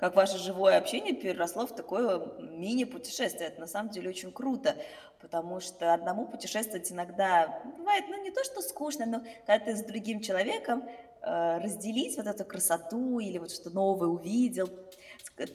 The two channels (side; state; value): both; identical; correlation 1.00